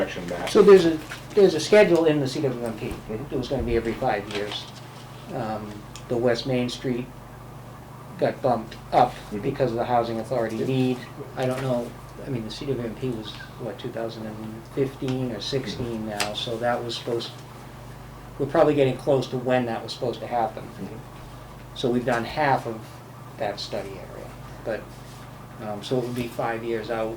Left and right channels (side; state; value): both; identical; correlation 1.00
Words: map. So there's a schedule in the CWMP. Mhm. It was gonna be every 5 years. The West Main Street got bumped up Mhm. because of the Housing Authority Yeah. need. I don't know, I mean, the CWMP was, what, 2015 or 16 now, so that was we're probably getting close to when that was supposed to happen. Mhm. So we've done half of that study area, but, so it would be 5 years out